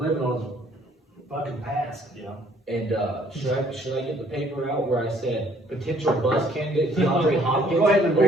on his fucking past. Yeah. And, should I get the paper out where I said potential bust candidate DeAndre Hopkins? Go ahead and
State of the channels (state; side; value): normal; both; correlation 0.61